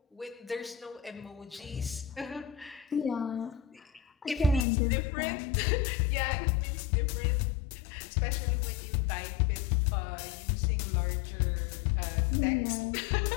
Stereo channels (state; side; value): drops out; right; at 4.7 s